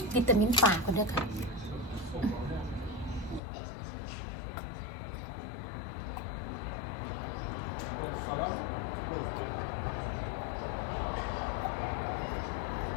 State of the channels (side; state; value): right; drops out; at 3.4 s